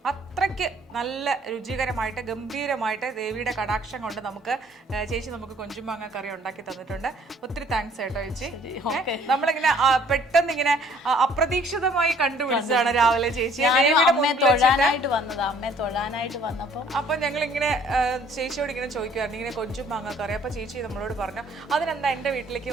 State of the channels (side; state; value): both; normal; correlation 0.59